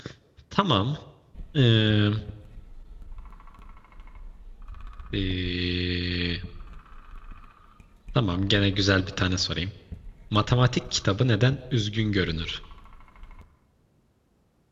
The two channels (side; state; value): both; identical; correlation 1.00